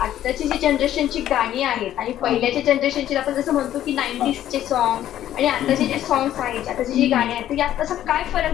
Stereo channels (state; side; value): quieter; right; 12.1 dB